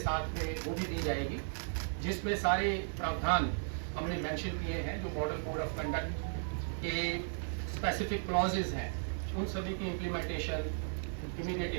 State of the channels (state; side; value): silent; left; digital silence